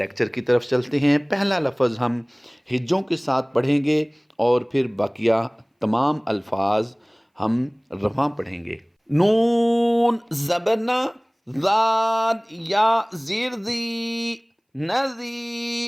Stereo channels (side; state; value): both; identical; correlation 1.00